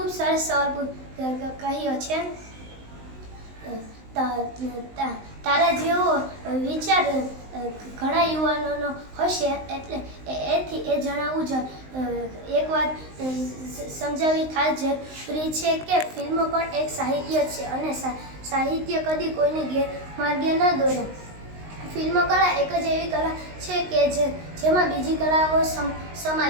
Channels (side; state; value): left; late; 19 ms